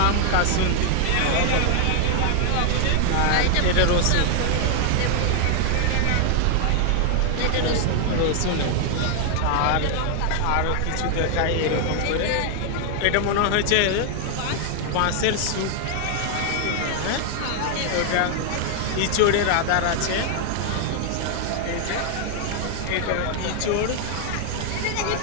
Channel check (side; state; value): both; different; correlation 0.00